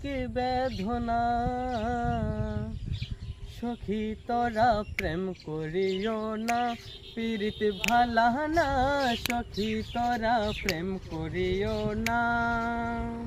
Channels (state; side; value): identical; both; correlation 1.00